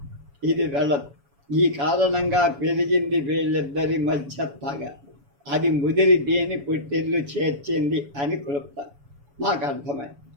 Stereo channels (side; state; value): left; late; 7.1 ms